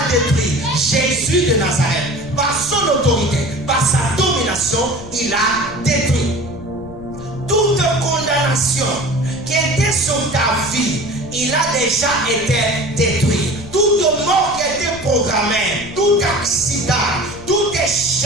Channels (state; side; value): noise; left; rumble, 16 dB below the sound